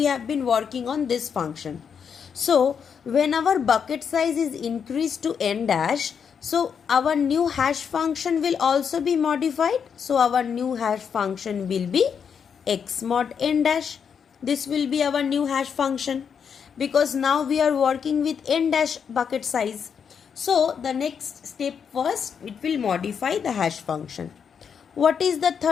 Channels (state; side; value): quieter; right; 7.0 dB